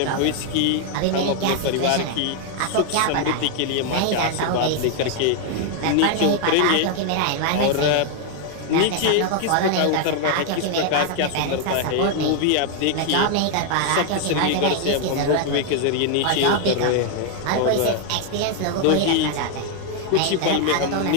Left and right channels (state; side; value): different; both; correlation 0.00